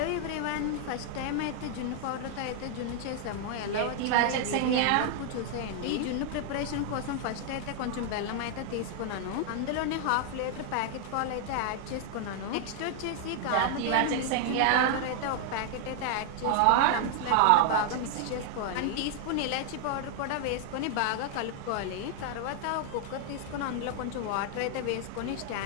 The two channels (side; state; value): both; different; correlation 0.00